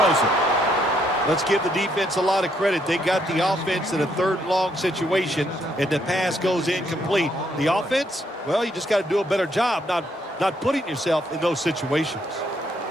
it. Let's give the defense a lot of credit. They got the offense in a 3rd long situation, and the pass goes incomplete. The offense, well, you just got to do a better job not putting yourself in those situations.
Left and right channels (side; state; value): both; normal; correlation 0.72